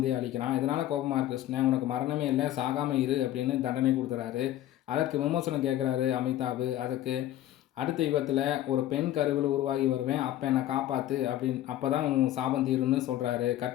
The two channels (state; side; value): quieter; right; 13.3 dB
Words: அழிக்கிறான். இதனால் கோபமாக இருக்கு கிருஷ்ணன். உனக்கு மரணமே இல்லை, சாகாமல் இரு அப்படின்னு தண்டனை கொடுத்துறாரு. அதற்கு விமர்சனம் கேட்குறாரு அமிதாப். அதுக்கு அடுத்த யுகத்தில் ஒரு பெண் கருவில் உருவாகி வருவேன், அப்போ என்னை காப்பாற்று அப்படின்னு, அப்போ தான் உன் சாபம் தீருன்னு சொல்கிறாரு.